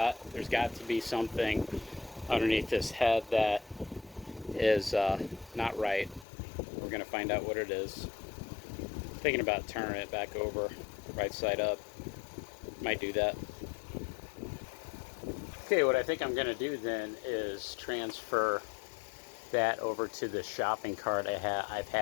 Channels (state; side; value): drops out; right; at 6.2 s